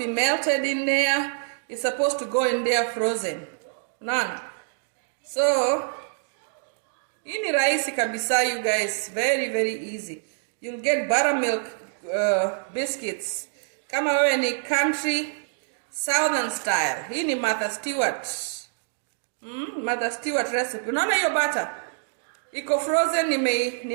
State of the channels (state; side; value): silent; left; digital silence